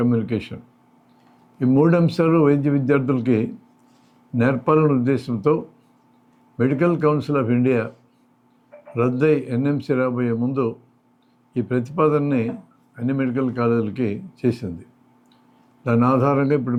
ఈ మూడు అంశాలు వైద్య విద్యార్థులకి నేర్పాలనే ఉద్దేశంతో మెడికల్ కౌన్సిల్ ఆఫ్ ఇండియా రద్దై ఎన్ఎంసి రాబోయే ముందు ఈ ప్రతిపాదనని అన్ని మెడికల్ కాలేజీలకి చేసింది. దాని ఆధారంగా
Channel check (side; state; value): both; identical; correlation 1.00